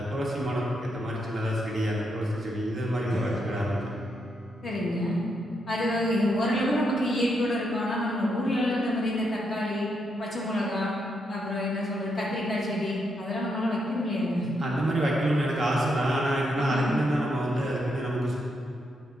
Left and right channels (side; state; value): both; normal; correlation 0.80